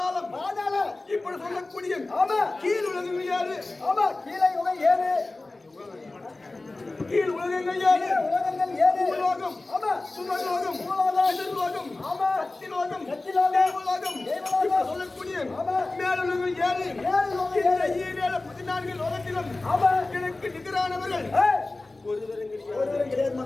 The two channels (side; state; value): right; quieter; 3.1 dB